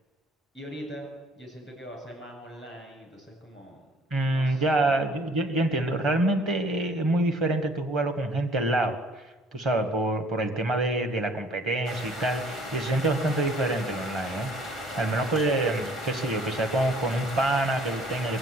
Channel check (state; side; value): normal; both; correlation 0.56